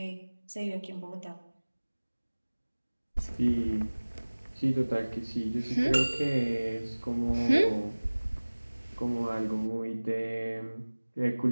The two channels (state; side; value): inverted; both; correlation -1.00